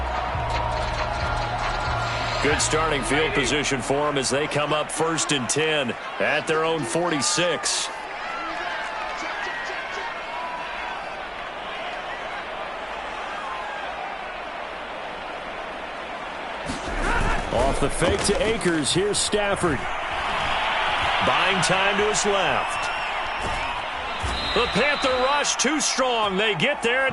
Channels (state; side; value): identical; both; correlation 1.00